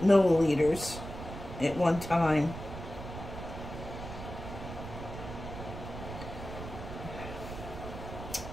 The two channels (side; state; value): right; noise; rumble, 10 dB below the sound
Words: milliliters at one time.